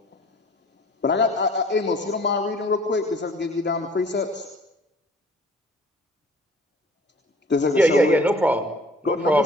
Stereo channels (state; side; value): normal; both; correlation 0.51